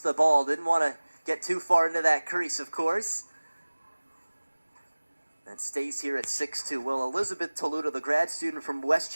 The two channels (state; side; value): inverted; both; correlation -1.00